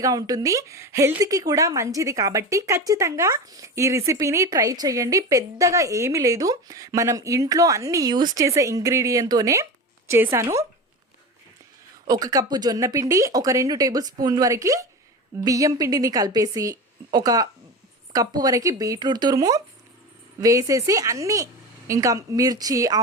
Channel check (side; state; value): both; normal; correlation 0.26